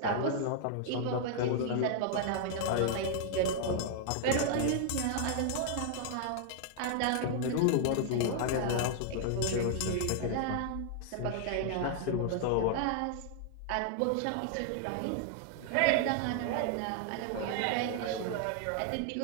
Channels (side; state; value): both; different; correlation 0.00